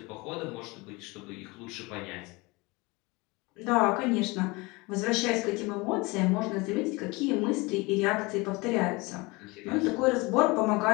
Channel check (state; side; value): quieter; right; 24.8 dB